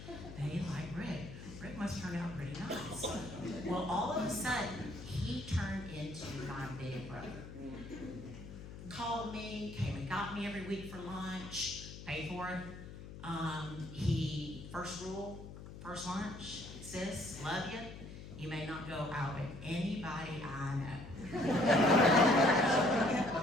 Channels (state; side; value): noise; left; hum, 13 dB below the sound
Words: they like Rick. Rick must turn out pretty nice. Well, all of a sudden, he turned into my big brother. Called me, came and got me every week for lunch, paid for it. He, first rule, first lunch, sis, love you. You may not go out with anybody I know.